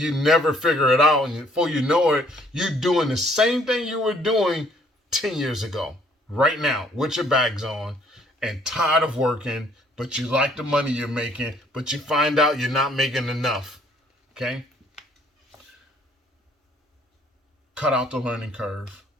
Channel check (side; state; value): both; normal; correlation 0.62